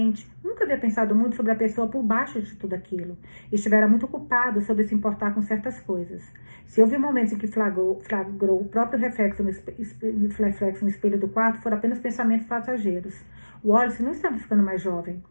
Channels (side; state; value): both; inverted; correlation -1.00